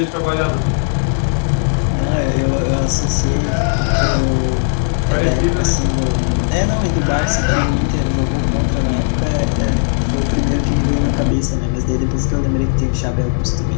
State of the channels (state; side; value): silent; right; 66 dB below the other